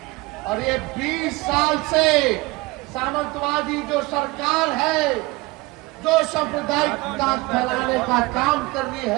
और ये 20 साल से सामंतवादी जो सरकार है, जो सांप्रदायिकता फैलाने का काम कर रही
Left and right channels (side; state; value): left; quieter; 22.8 dB